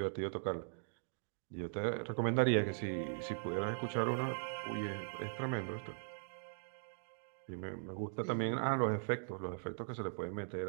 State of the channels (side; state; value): left; silent; digital silence